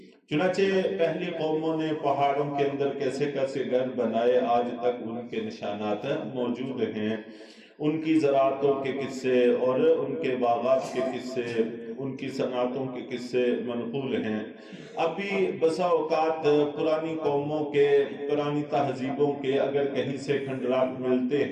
چنانچہ پہلی قوموں نے پہاڑوں کے اندر کیسے کیسے گھر بنائے، آج تک ان کے نشانات موجود ہیں. ان کی زراعتوں کے قصے اور ان کے باغات کے قصے، ان کی صنعتوں کے قصے منقول ہیں. ابھی بسا اوقات پرانی قوموں کے، پرانی تہذیبوں کے اگر کہیں سے کھنڈرات ملتے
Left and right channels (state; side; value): identical; both; correlation 1.00